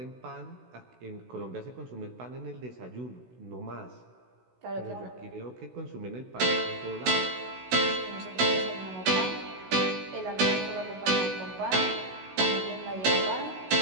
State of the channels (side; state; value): left; late; 16 ms